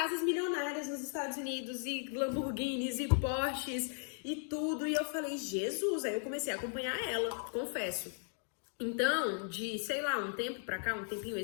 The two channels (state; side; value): silent; right; 53 dB below the other